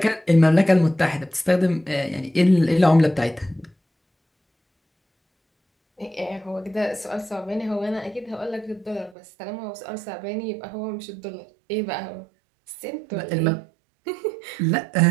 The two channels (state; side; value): drops out; left; at 9.2 s